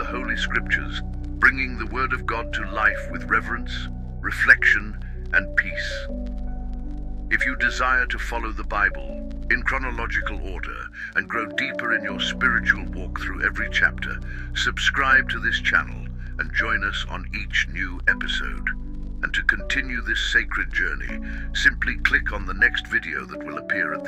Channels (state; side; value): identical; both; correlation 1.00